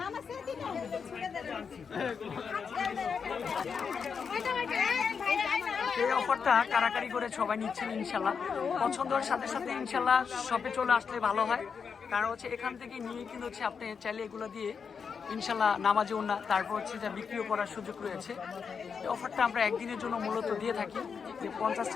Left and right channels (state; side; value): quieter; right; 6.1 dB